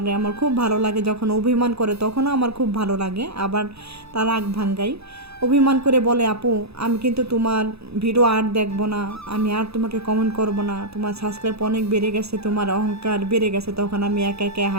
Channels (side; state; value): left; late; 0.78 ms